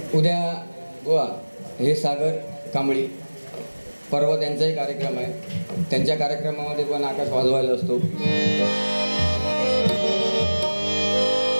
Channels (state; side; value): inverted; both; correlation -1.00